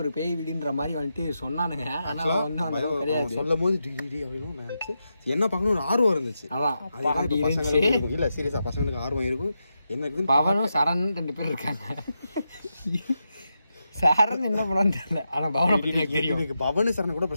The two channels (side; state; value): both; inverted; correlation -0.87